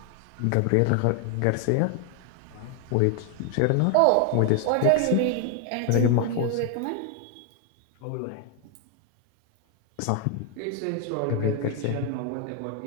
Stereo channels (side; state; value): both; different; correlation 0.00